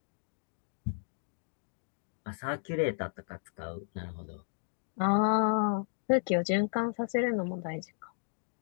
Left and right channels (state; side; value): silent; right; digital silence